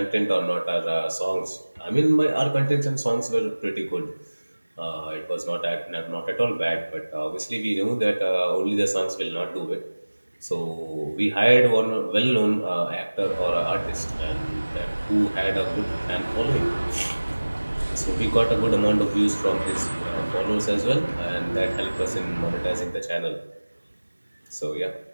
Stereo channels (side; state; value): both; inverted; correlation -1.00